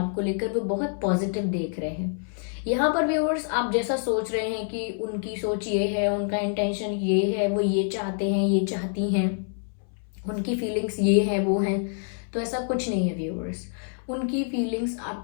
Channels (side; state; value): right; silent; 60 dB below the other